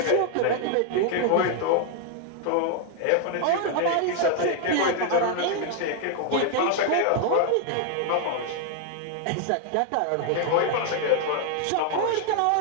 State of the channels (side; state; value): both; different; correlation 0.00